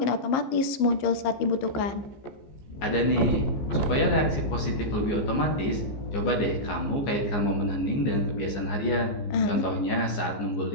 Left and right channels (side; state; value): right; late; 15 ms